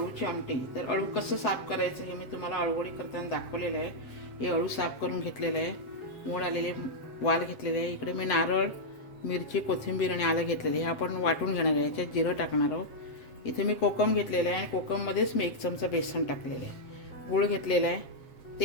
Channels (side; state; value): right; late; 7.5 ms